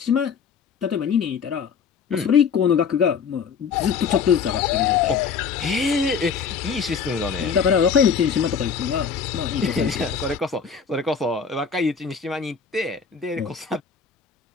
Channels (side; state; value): right; quieter; 6.3 dB